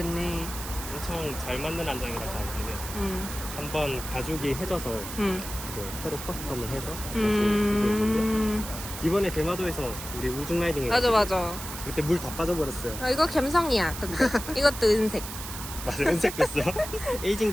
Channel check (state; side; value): noise; right; hiss, 9 dB below the sound